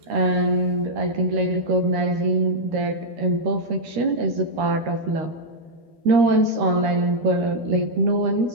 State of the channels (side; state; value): left; late; 13 ms